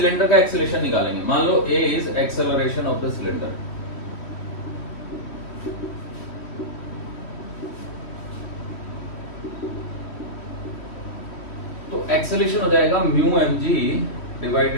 का एक्सेलरेशन निकालेंगे। मान लो A is acceleration of the cylinder. तो एक्सेलरेशन हो जाएगा mu M g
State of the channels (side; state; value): right; late; 3.1 ms